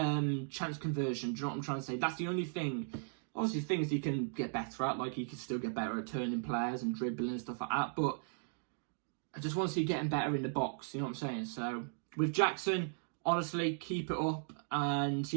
conversion. Do you know what I'm trying to say? That's the only thing. Obviously, things he can get better at. Like, he can still get better at turning players and dribbling and stuff like that. But I just want to see getting better in the box. You know what I'm saying? So, with Jackson, honestly, keep it up. And,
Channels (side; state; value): left; silent; digital silence